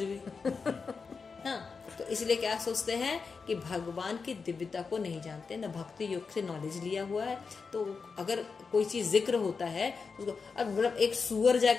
हाँ, तो इसलिए क्या सोचते हैं कि भगवान की दिव्यता को नहीं जानते, न भक्ति योग से नॉलेज लिया हुआ है। तो अगर कोई चीज जिक्र होता है उसको, अब मतलब एक सुअर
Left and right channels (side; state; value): right; quieter; 5.0 dB